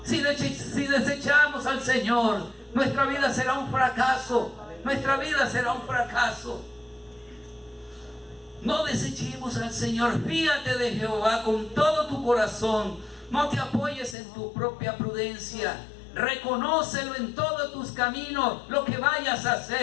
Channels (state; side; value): drops out; right; at 14.2 s